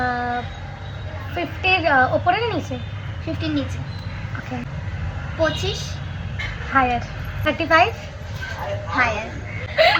50-র ওপরে না নিচে? 50-র নিচে। ওকে। 25? হায়ার। 35? হায়ার।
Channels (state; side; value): identical; both; correlation 1.00